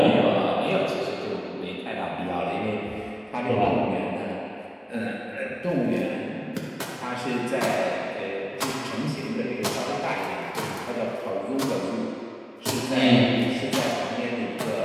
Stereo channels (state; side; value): identical; both; correlation 1.00